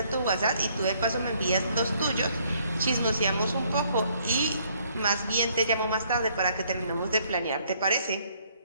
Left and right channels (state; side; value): inverted; both; correlation -0.66